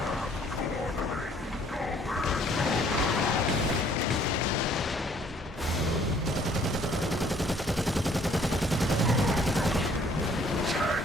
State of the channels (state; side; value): normal; both; correlation 0.60